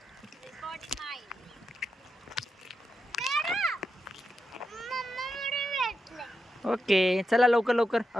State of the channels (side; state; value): both; normal; correlation 0.87